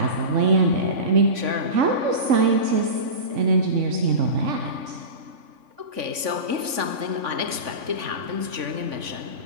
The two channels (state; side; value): late; left; 3.5 ms